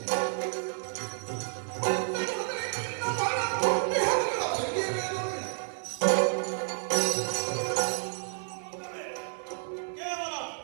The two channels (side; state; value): left; silent; digital silence